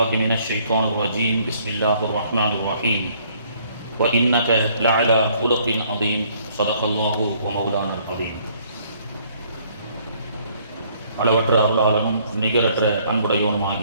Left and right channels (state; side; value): inverted; both; correlation -0.63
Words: من الشيطان الرجيم بسم الله الرحمن الرحيم وإنك لعلى خلق عظيم صدق الله ومولانا العظيم. அளவற்ற அருளாளனும் நிகரற்ற